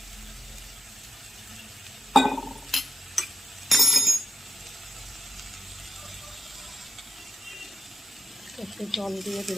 একটু জল দিয়ে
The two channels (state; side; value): normal; both; correlation 0.88